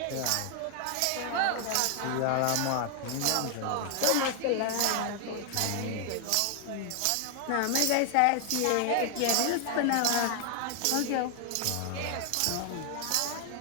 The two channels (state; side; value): different; both; correlation 0.00